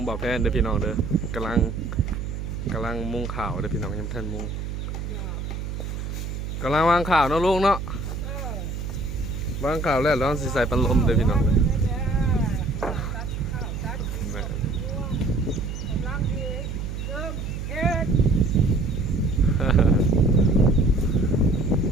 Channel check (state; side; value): noise; right; hum, 5 dB below the sound